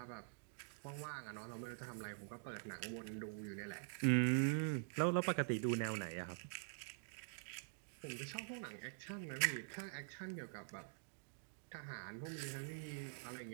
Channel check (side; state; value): left; silent; digital silence